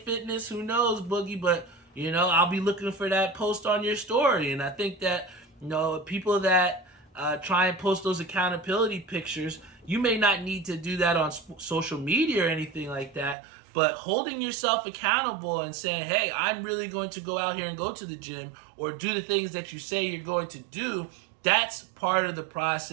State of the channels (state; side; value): drops out; left; at 13.4 s